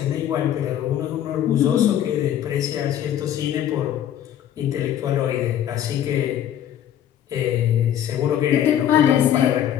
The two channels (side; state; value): right; quieter; 10.7 dB